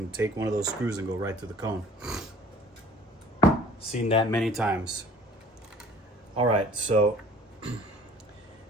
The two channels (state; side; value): normal; both; correlation 0.51